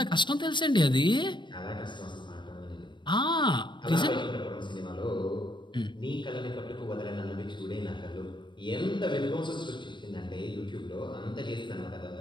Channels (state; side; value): late; right; 0.22 ms